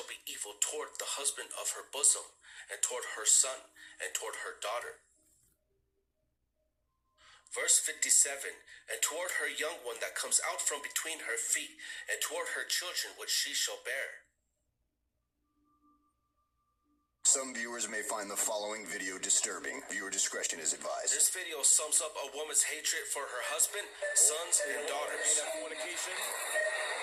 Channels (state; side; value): identical; both; correlation 1.00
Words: be evil toward the husband of her bosom, and toward her son, and toward her daughter. Verse 57, and toward her young one that comes out from between her feet, and toward her children which she shall bear. Some viewers may find the following video disturbing. Viewer discretion is advised. This video sums up a woman's hatred for her husband, sons, and daughters.